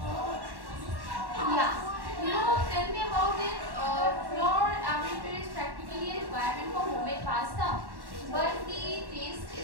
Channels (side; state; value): left; late; 1.1 ms